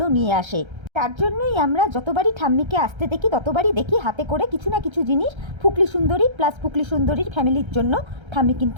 নিয়ে আসে। তার জন্যই আমরা যতবারই ঠাম্মিকে আসতে দেখি ততবারই দেখি হাতে করে কিছু না কিছু জিনিস ফুকলি সুন্দরী প্লাস ফুকলি সুন্দরীর ফ্যামিলির জন্য ঠাম্মি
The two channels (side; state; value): left; late; 1.3 ms